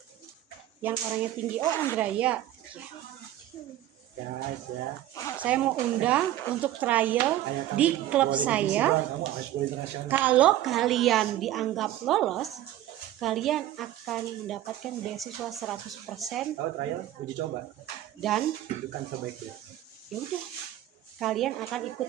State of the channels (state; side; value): quieter; left; 13.4 dB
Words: Yang orangnya tinggi. Oh, Andraya. Ya. Saya mau undang untuk trial Ayo, kamu di klub boleh saya. divisi doang, kamu harus boleh internasional. Kalau kalian dianggap lolos, kalian akan mendapatkan beasiswa 100% Tahu trial uji coba. dan Bukan sebaiknya. ya udah, kalian akan ikut